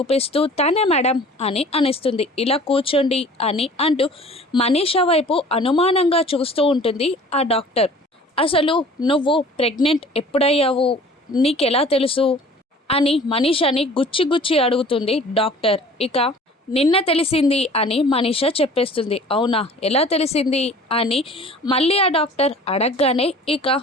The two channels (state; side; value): normal; both; correlation 0.47